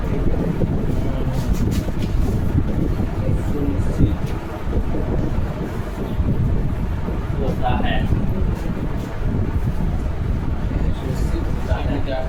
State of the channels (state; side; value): identical; both; correlation 1.00